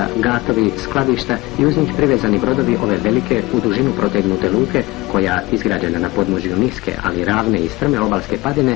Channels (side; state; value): right; quieter; 21.5 dB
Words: gatovi, skladišta i uz njih privezani brodovi ove velike u dužinu protegnute luke koja, izgrađena na podnožju niske, ali ravne i strme obalske padine,